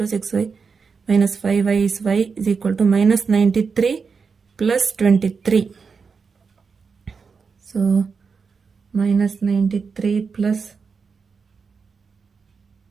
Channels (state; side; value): quieter; left; 5.3 dB